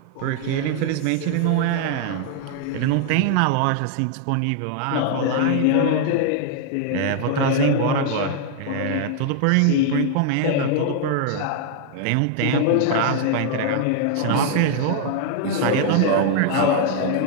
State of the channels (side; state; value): both; different; correlation 0.00